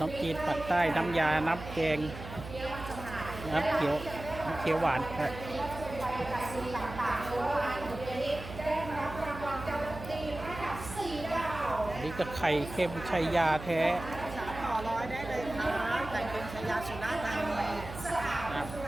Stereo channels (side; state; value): right; noise; hum, 12 dB below the sound